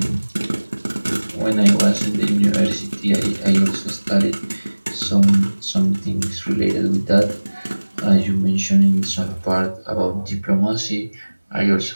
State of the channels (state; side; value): inverted; both; correlation -1.00